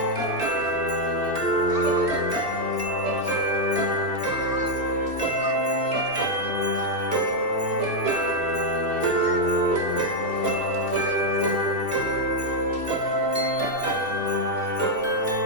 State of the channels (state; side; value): late; left; 2.7 ms